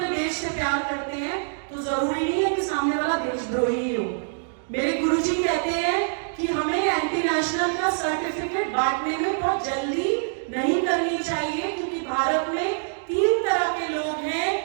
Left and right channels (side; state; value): left; silent; digital silence